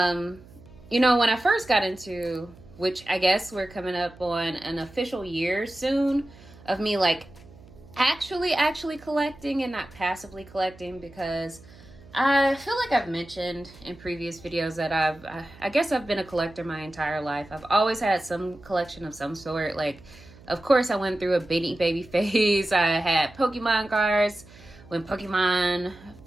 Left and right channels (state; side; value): noise; right; hum, 22 dB below the sound